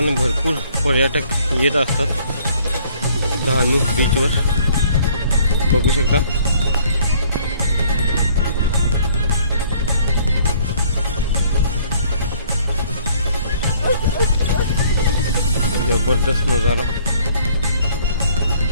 भरपूर पर्यटक येत असतात डहाणू बीचवर, बघू शकता. जबरदस्त नजारा.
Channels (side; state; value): both; inverted; correlation -0.59